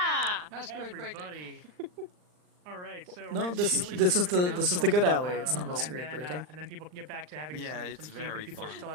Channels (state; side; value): late; left; 39 ms